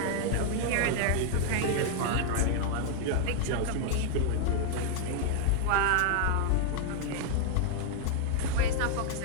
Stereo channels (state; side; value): different; both; correlation 0.00